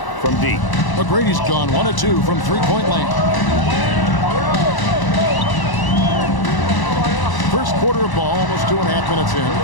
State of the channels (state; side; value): late; right; 1.0 ms